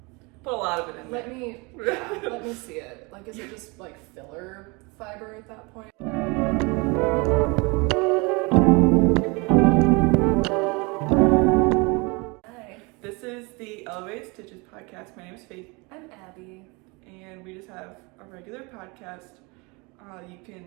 Put a lot of it in let me see it. Like, is it just like filler fiber at that point? Hi. This is the Elevated Stitches podcast. My name is Faith. I'm Abby. And we just have a regular podcast. You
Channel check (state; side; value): quieter; left; 27.9 dB